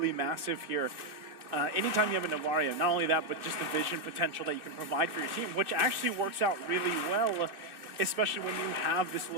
massive here. Anytime you have a Novaria, not only that, but just the vision potential that you can provide for your team, which actually works out really well, especially when you have this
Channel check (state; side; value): late; left; 2.6 ms